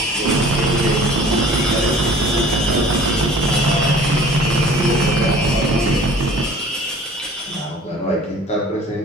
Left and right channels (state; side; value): normal; both; correlation 0.47